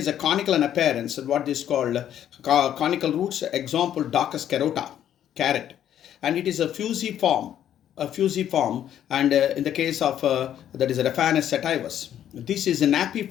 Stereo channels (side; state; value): right; quieter; 10.6 dB